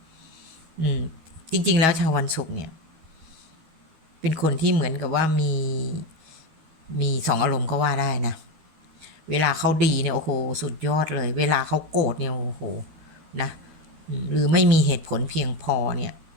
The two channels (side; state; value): left; late; 12 ms